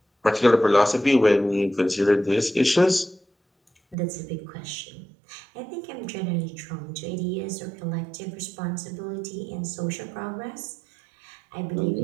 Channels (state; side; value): drops out; left; at 4.0 s